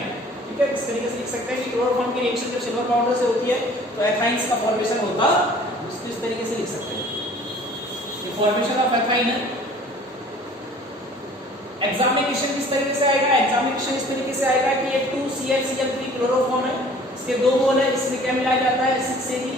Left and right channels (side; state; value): both; normal; correlation 0.50